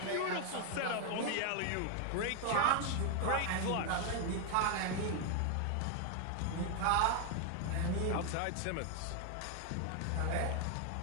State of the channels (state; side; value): different; both; correlation 0.00